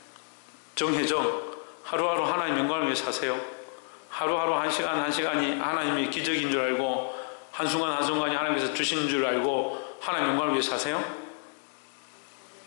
정혜정, 하루하루 하나님 영광을 위해 사세요. 하루하루 한 시간 한 시간이 하나님의 기적인 줄 알고, 한순간 한순간이 하나님께서 주신 줄 알고 하나님 영광을 위해 사세요?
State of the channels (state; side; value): silent; right; 58 dB below the other